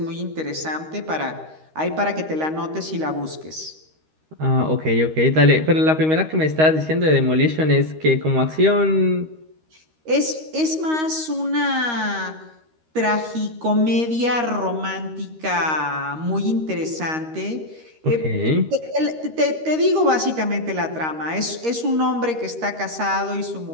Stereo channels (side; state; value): left; late; 13 ms